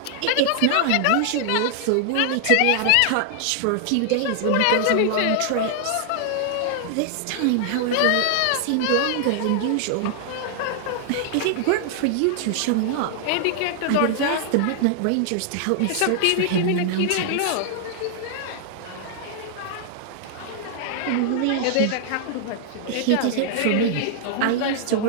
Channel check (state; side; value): different; both; correlation 0.00